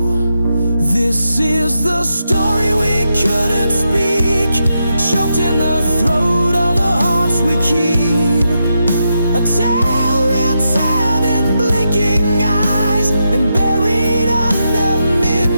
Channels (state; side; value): inverted; both; correlation -0.85